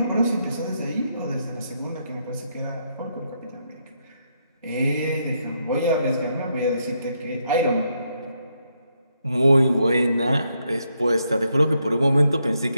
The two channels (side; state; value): both; inverted; correlation -0.78